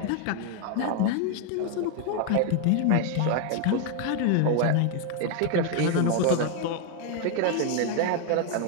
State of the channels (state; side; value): different; both; correlation 0.01